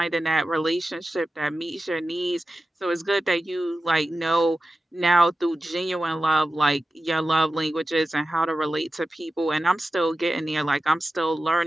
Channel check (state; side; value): normal; both; correlation 0.93